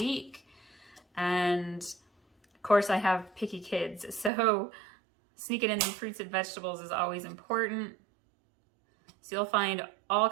And of course I have picky kids, so sneaking in some fruits and vegetables is always important. So you'll find all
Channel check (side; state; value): left; drops out; at 4.3 s